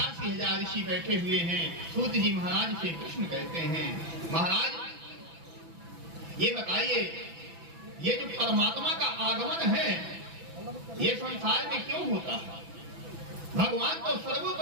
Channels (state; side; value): late; left; 6.0 ms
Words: ऋषि बैठे हुए हैं सूत जी महाराज से प्रश्न करते हैं, महाराज ये बताइए, ये जो परमात्मा का आगमन है ये संसार में क्यों होता है? भगवान तो